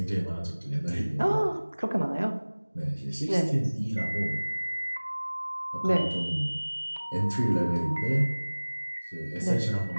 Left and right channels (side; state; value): both; inverted; correlation -1.00